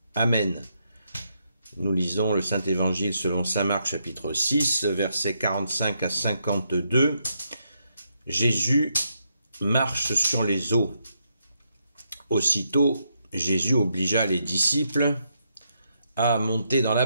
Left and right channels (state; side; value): inverted; both; correlation -0.79